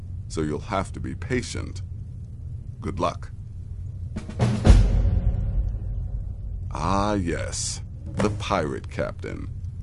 so you'll have to be patient. Good luck. Ah, yes, the pirate captain.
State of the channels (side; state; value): both; identical; correlation 1.00